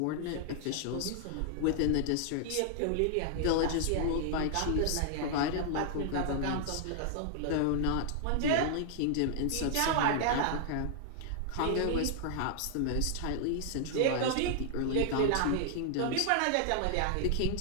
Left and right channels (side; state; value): both; different; correlation -0.01